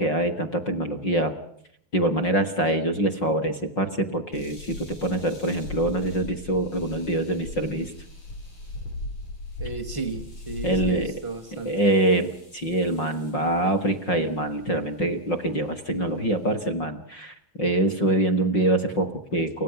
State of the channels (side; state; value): right; late; 5.5 ms